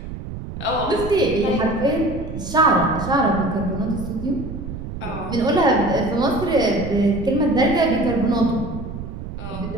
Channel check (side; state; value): right; noise; rumble, 9 dB below the sound